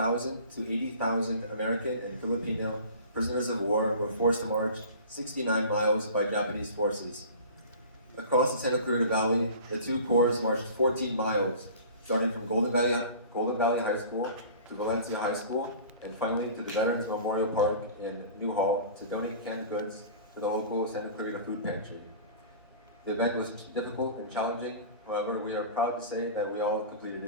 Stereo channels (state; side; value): inverted; both; correlation -0.41